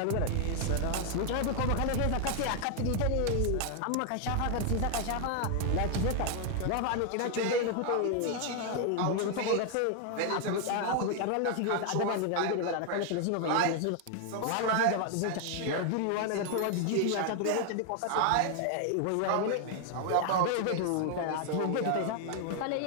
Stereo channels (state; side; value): different; both; correlation 0.00